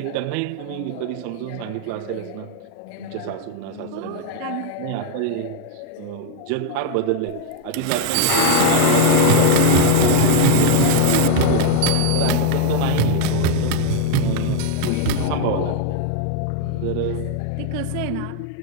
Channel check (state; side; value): different; both; correlation 0.00